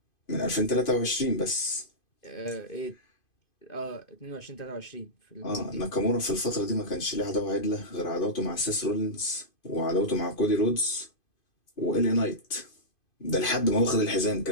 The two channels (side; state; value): right; late; 2.5 ms